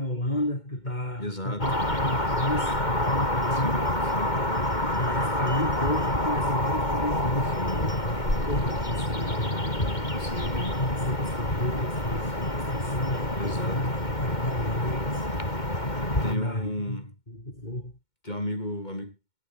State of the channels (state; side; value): late; right; 2.2 ms